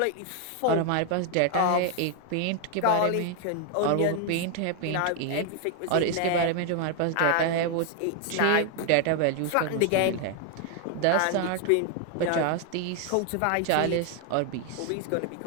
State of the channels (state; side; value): different; both; correlation 0.00